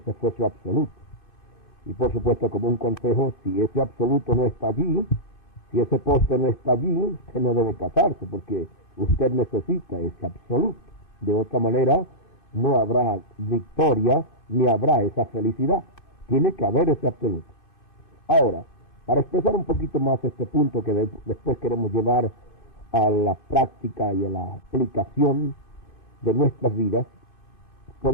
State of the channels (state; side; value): late; right; 2.6 ms